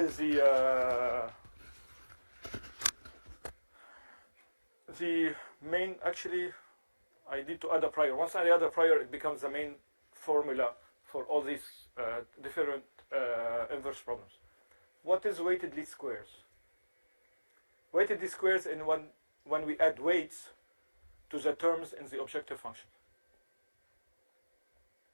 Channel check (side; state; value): both; inverted; correlation -1.00